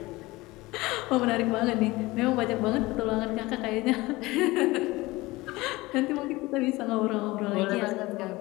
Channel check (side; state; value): right; quieter; 20.7 dB